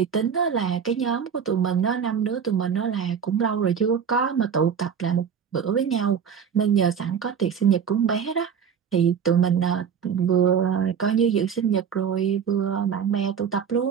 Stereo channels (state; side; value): quieter; left; 7.3 dB